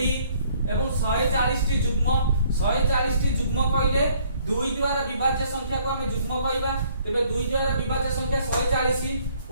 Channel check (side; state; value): both; inverted; correlation -0.62